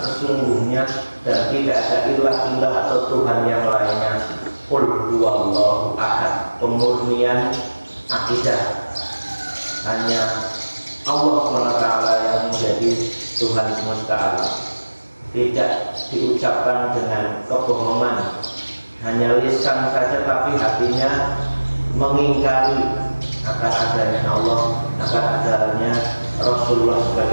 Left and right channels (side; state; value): both; inverted; correlation -1.00